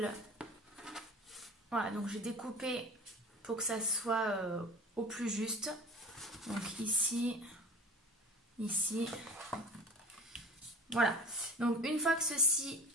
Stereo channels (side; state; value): both; normal; correlation 0.40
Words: voilà, donc j'ai découpé pour que ça soit au plus juste. Donc ici, ici, voilà. Donc une fois que ceci